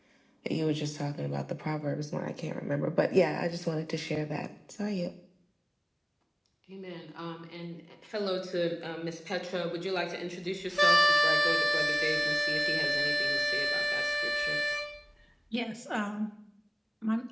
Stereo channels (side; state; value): both; identical; correlation 1.00